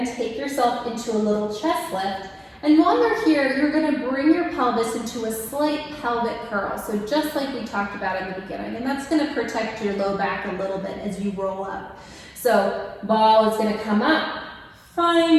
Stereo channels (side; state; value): both; identical; correlation 1.00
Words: take yourself into a little chest lift. And while you're here, you're gonna bring your pelvis into a slight pelvic curl. So just like we talked about in the beginning, and that's gonna protect your low back a little bit as you roll up. So ball is gonna come up,